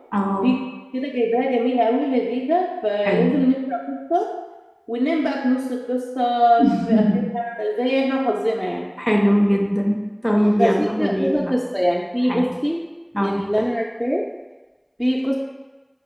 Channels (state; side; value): identical; both; correlation 1.00